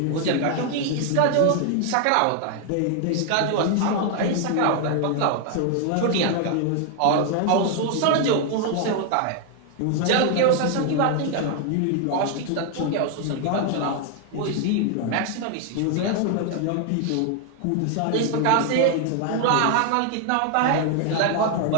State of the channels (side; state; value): both; different; correlation 0.00